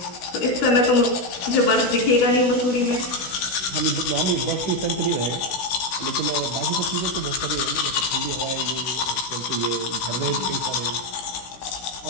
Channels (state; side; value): late; right; 16 ms